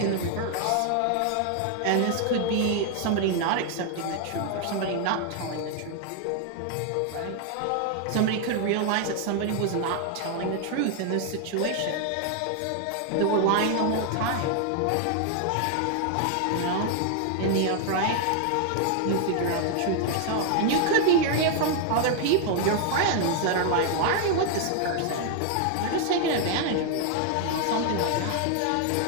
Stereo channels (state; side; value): different; both; correlation 0.00